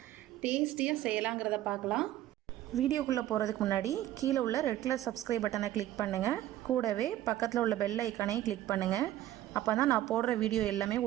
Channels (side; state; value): left; quieter; 13.6 dB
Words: டேஸ்டியாக செய்யலாங்கிறத பார்க்கலாம். வீடியோக்குள்ளே போகிறதுக்கு முன்னாடி கீழே உள்ள ரெட் கலர் சப்ஸ்கிரைப் பட்டனை கிளிக் பண்ணுங்கள். கூடவே பக்கத்தில் உள்ள பெல் ஐக்கானையும் கிளிக் பண்ணுங்கள். அப்போ தான் நான் போடுற வீடியோ எல்லாமே